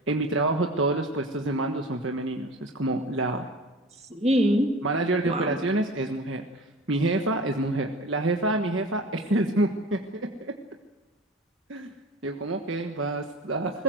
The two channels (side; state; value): both; normal; correlation 0.38